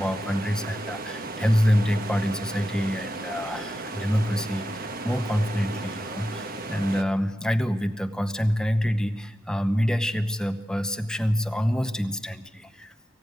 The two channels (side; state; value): both; normal; correlation 0.90